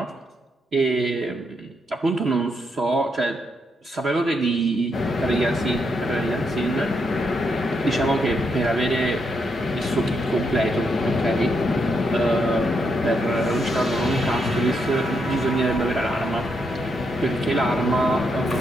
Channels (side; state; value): both; normal; correlation 0.79